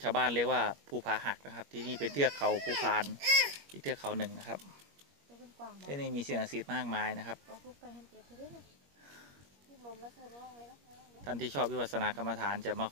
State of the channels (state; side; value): late; left; 21 ms